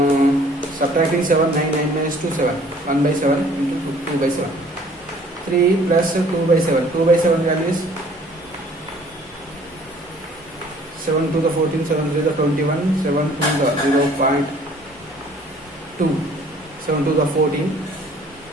Subtracting 7, 9, 9 minus 2, 7. 1 by 7 into 2 by 7. 3 plus 2 by 7. 2 by 7 value is 7 to the 14, 7 to the 21, 7 to the 0.2, 7 to the 14.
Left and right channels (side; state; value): both; normal; correlation 0.55